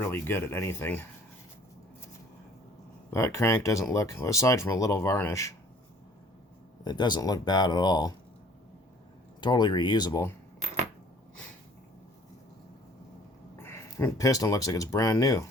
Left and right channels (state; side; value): normal; both; correlation 0.54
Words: good at anything. That crank doesn't look, aside from a little varnish, it doesn't look bad at all. Totally reusable. Piston looks like it's brand new.